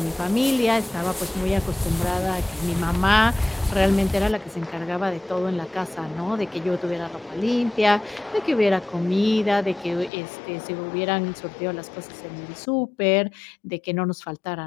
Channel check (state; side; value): drops out; right; at 10.1 s